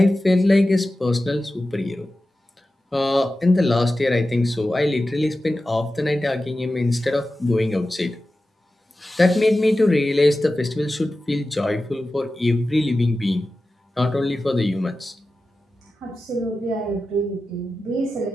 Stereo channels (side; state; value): both; normal; correlation 0.94